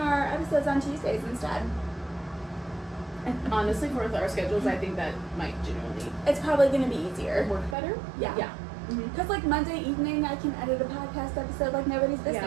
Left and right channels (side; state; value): left; drops out; at 7.8 s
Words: episodes on Tuesdays instead. And honestly, for our schedules, I think that might genuinely It's probably gonna be easier. work better. Yeah. Yeah. Because like Monday evening, I can edit a podcast episode like nobody's business.